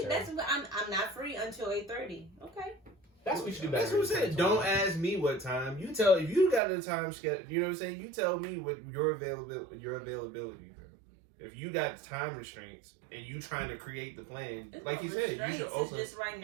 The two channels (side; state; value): left; drops out; at 6.6 s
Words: that's what I'm not free until 8:30. Okay. That's what you do better. That's what I'm saying. Don't ask me what time. You tell if you got a time schedule. You know what I'm saying. You tell me what your availability. Bro. If you got time restraints and you trying to create the plan, It's like no you said, you restraints, should open. It's just right